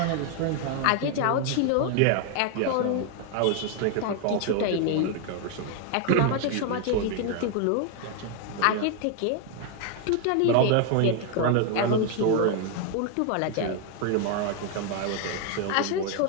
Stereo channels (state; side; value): different; both; correlation 0.01